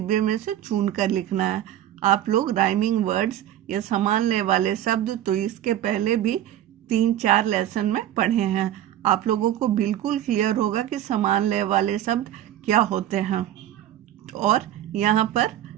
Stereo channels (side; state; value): left; quieter; 12.1 dB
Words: में से चुनकर लिखना है। आप लोग राइमिंग वर्ड्स या समान लय वाले शब्द तो इसके पहले भी 3-4 लेसन में पढ़े हैं। आप लोगों को बिल्कुल क्लियर होगा कि समान लय वाले शब्द क्या होते हैं। और यहाँ पर